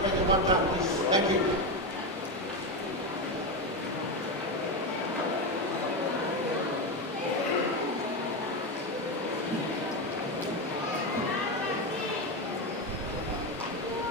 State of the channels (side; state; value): both; normal; correlation 0.13